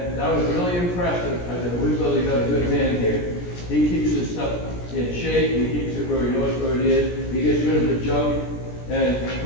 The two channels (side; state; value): right; late; 17 ms